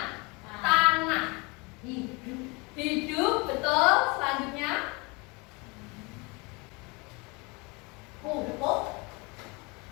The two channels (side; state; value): right; quieter; 27.6 dB